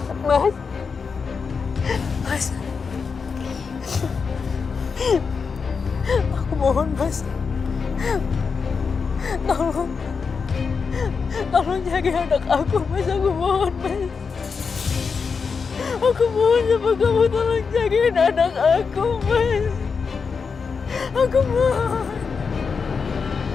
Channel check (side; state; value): right; quieter; 5.4 dB